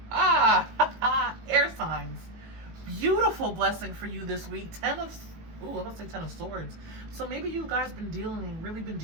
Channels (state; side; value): late; left; 18 ms